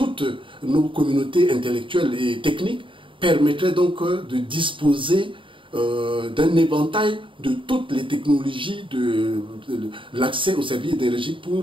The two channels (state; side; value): late; left; 0.25 ms